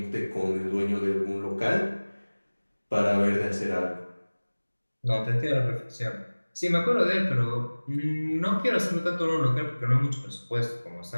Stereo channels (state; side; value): inverted; both; correlation -1.00